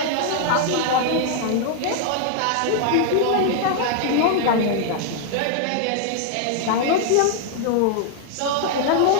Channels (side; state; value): both; different; correlation 0.00